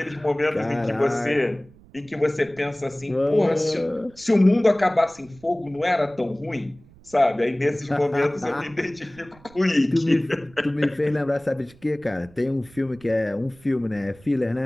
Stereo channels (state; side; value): noise; right; rumble, 25 dB below the sound